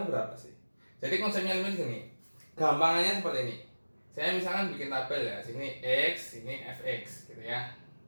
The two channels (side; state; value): both; inverted; correlation -1.00